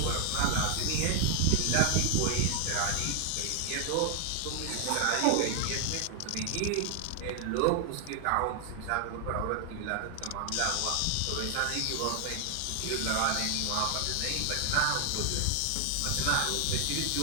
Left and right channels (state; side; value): different; both; correlation 0.00